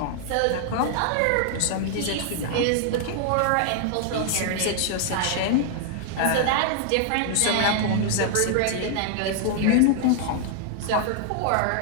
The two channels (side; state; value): both; different; correlation 0.00